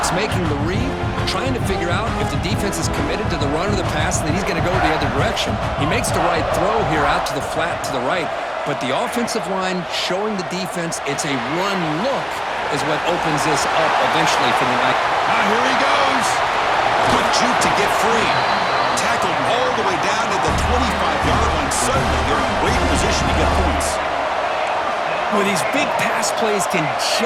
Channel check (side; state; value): both; identical; correlation 1.00